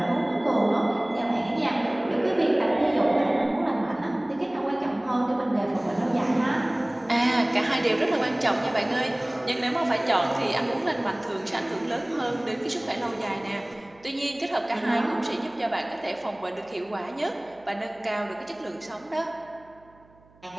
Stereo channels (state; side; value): noise; right; hum, 29 dB below the sound